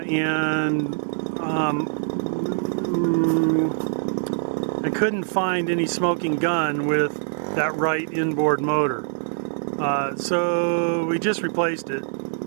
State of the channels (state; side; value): silent; left; 63 dB below the other